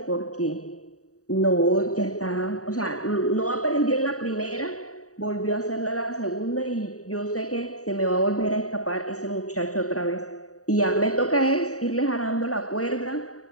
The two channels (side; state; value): right; late; 0.66 ms